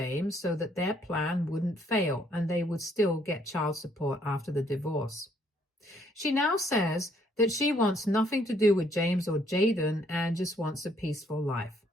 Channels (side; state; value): both; normal; correlation 0.67